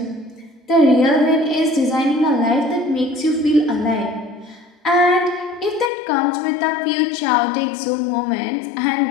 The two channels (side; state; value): right; drops out; at 5.9 s